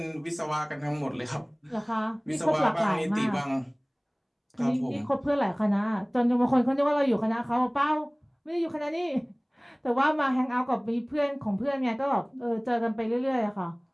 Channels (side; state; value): both; identical; correlation 1.00